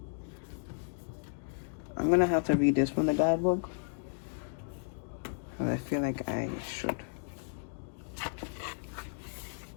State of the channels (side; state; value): right; silent; digital silence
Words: I'm going to have to read this from the guidebook. Because I feel like I should.